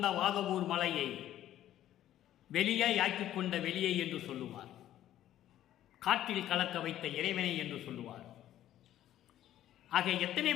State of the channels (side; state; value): right; quieter; 12.5 dB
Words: வாதவூர் மலையை வெளியாய் ஆக்கிக் கொண்ட வெளியை என்று சொல்லுவார். காற்றில் கலக்க வைத்த இறைவனை என்று சொல்லுவார். ஆக எத்தனை